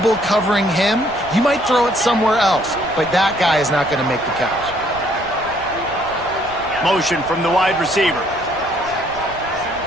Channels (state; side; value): noise; right; rumble, 19 dB below the sound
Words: covering him. You might throw it somewhere else, but that guy is not going to make the catch. Motion from the wide receiver.